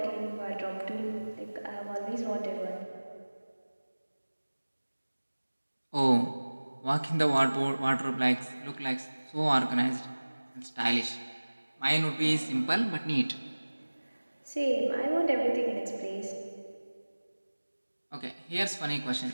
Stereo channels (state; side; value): inverted; both; correlation -1.00